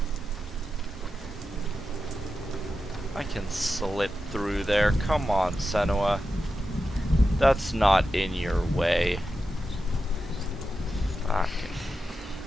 it? I can slip through there. Come on, Senua. That's not in your way. Fucking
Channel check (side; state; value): both; normal; correlation 0.90